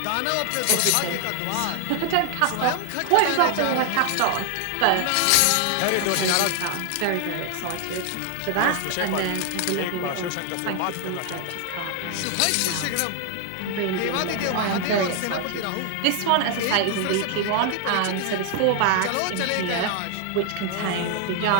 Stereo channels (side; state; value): both; different; correlation 0.00